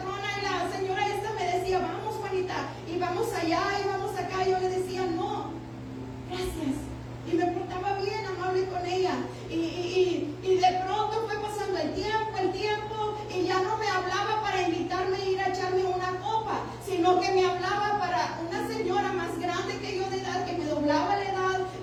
y la señora esta me decía, vamos Juanita, y vamos allá, y vamos acá. Yo le decía, no, gracias. Y me portaba bien, amable con ella. Y de pronto fue pasando el tiempo, y ya no me hablaba para invitarme a ir a echarme una copa, sino que me hablaba para una señora más grande que yo de edad, que me doblaba la edad,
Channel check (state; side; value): identical; both; correlation 1.00